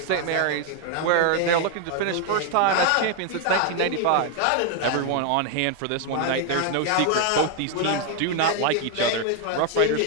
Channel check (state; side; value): different; both; correlation 0.01